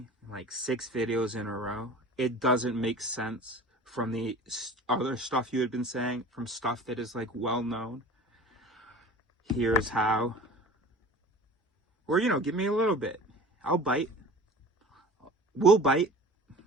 like 6 videos in a row. It doesn't make sense from the other stuff you had been saying, from stuff that is like well known. Here's how. Or, you know, give me a little bit. I'll bite. We'll bite.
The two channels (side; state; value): both; normal; correlation 0.41